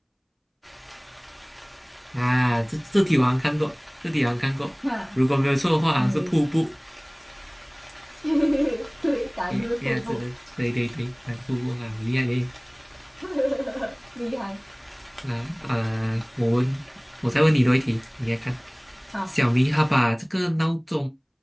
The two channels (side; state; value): both; identical; correlation 1.00